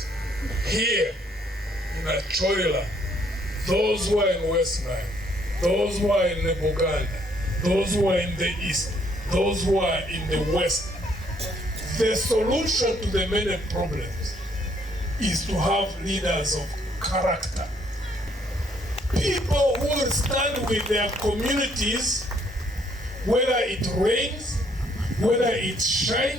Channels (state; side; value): normal; both; correlation 0.67